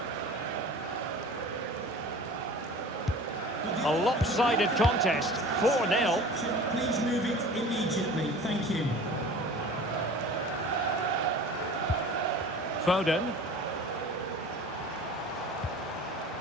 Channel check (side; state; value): both; normal; correlation 0.41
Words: A lopsided contest, 4-0. Please move it immediately. Thank you. Foden.